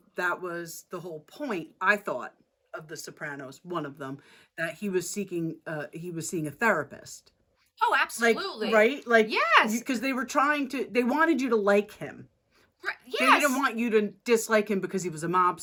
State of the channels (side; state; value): both; identical; correlation 1.00